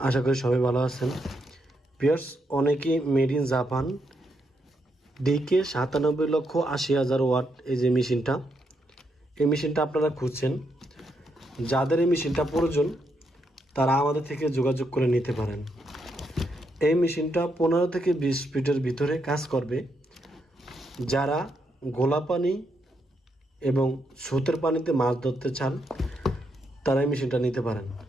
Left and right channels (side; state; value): both; normal; correlation 0.79